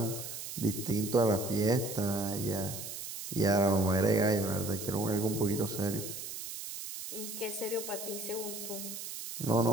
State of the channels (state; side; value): noise; right; hiss, 8 dB below the sound